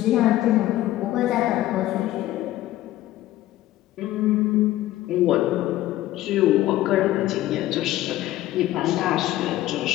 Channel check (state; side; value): quieter; right; 15.0 dB